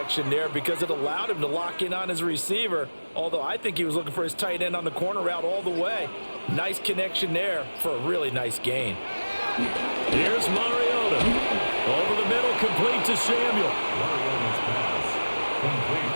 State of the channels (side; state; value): both; inverted; correlation -1.00